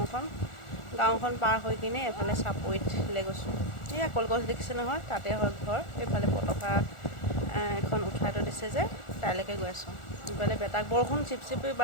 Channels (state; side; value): late; right; 1.4 ms